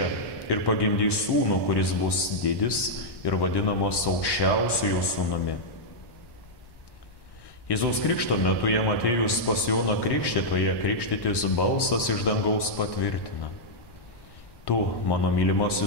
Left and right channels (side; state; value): right; late; 1.1 ms